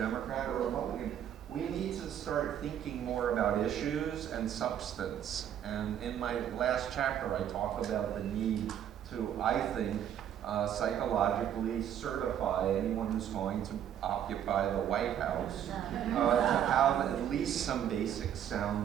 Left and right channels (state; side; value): quieter; left; 9.9 dB